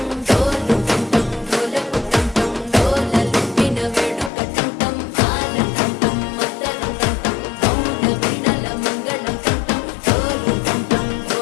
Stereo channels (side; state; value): right; drops out; at 4.3 s